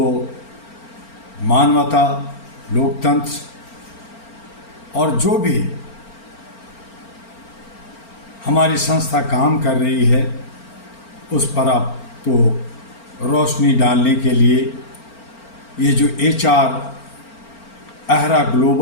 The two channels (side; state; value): right; late; 4.4 ms